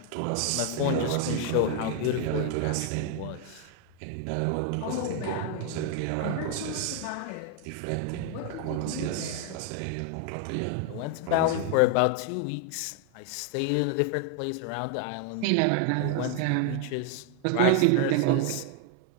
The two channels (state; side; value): different; both; correlation 0.00